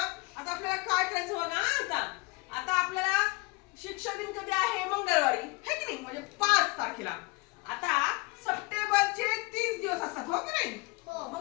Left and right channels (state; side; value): quieter; right; 26.3 dB